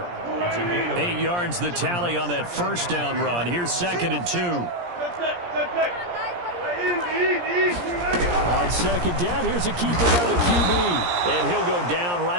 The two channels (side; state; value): left; late; 17 ms